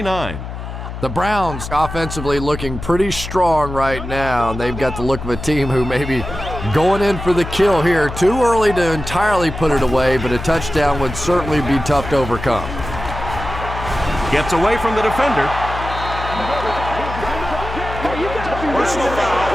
The Browns offensively looking pretty strong right now. They've got the look of a team who may be going in for the kill here. Too early to entirely put it away, but a touchdown would certainly be tough to overcome. Gets away from the defender. Personal foul,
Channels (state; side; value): noise; left; hum, 8 dB below the sound